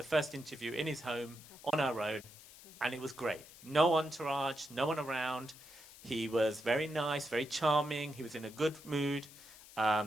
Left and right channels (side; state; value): left; noise; hiss, 19 dB below the sound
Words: first interview in his home on our own, and it was great. No entourage, no one around. He was very nice, very charming. He was in a good mood.